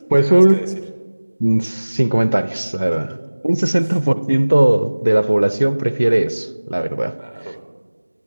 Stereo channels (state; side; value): inverted; both; correlation -1.00